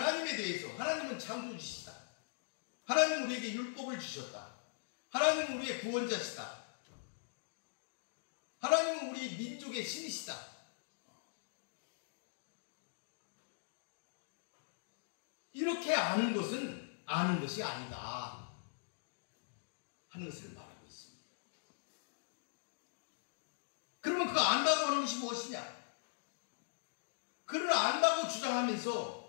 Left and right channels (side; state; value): right; silent; digital silence